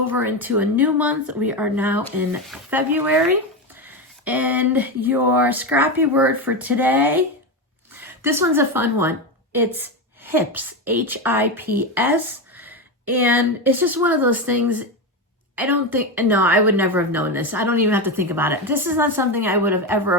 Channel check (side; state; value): both; normal; correlation 0.14